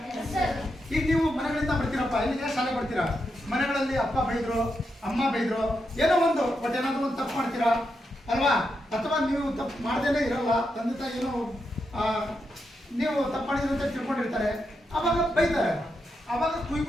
ಈಗ ನೀವು ಮನೆಗಳಿಂದ ಬರ್ತೀರಪ್ಪ, ಇಲ್ಲಿಗೆ ಶಾಲೆ ಬರ್ತೀರಾ, ಮನೆಗಳಲ್ಲಿ ಅಪ್ಪ ಬೈದ್ರು, ಅಮ್ಮ ಬೈದ್ರು, ಏನೋ ಒಂದು ಬಟ್ ಏನಾದ್ರು ಒಂದು ತಪ್ಪು ಮಾಡ್ತೀರಾ ಅಲ್ವಾ? ಅಥವಾ ನೀವು ತಪ್ಪು ಮಾಡ್ದೇನೆ ಇರಲ್ಲ, ತಂದೆ ತಾಯಿ ಏನೋ ನೀವು ತಪ್ಪು ಮಾಡಿದ್ರು ಅಂತ ತಿಳ್ಕೊಂಡಿರ್ತಾರೆ, ಅವಾಗ ಬೈತಾರೆ, ಅವಾಗ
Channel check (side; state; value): both; normal; correlation 0.84